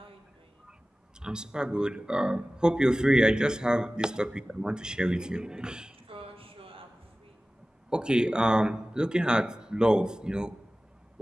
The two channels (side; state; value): both; normal; correlation 0.97